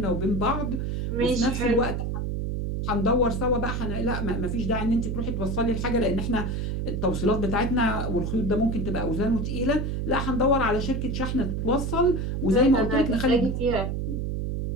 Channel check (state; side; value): noise; right; hum, 2 dB below the sound